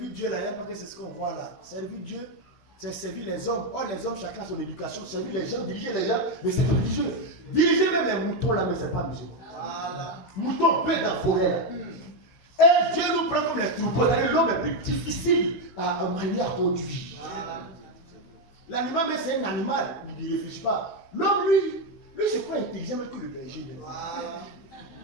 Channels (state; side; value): late; right; 16 ms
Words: Dieu là, parce que c'est ce qu'on voit là. Servir Dieu, c'est servir les hommes. Or, les hommes, chacun a son éducation, servir les gens, diriger les gens, mais c'est religieux. Diriger même les moutons là, mais c'est pas musulman. Voilà. Moutons bêtes dans la forêt là. Et Dieu nous prend comme les troupeaux. L'homme est plus difficile à manier, à conduire. L'animal, mais c'est un animal, il ne réfléchit pas. L'homme, lui c'est pas intelligent que le berger.